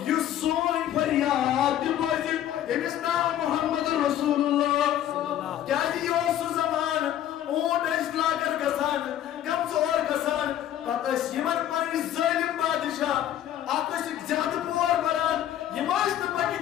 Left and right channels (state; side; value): quieter; right; 11.5 dB